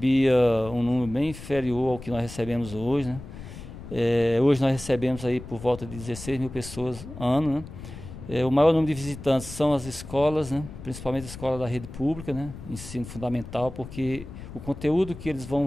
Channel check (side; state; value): left; noise; rumble, 13 dB below the sound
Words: um número bem inferior ao que nós recebemos hoje, né? Hoje nós recebemos aí por volta de 16 mil pessoas ano, né? O maior número de visitantes são as escolas, né? Principalmente a escola da rede pública, né? Ensino fundamental, porque o conteúdo que eles